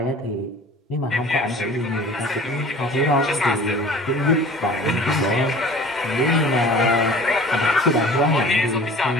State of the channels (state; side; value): normal; both; correlation 0.44